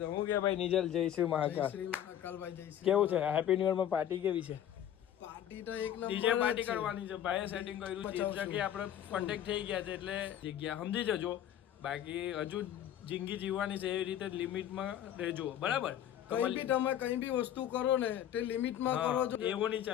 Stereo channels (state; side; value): quieter; right; 10.8 dB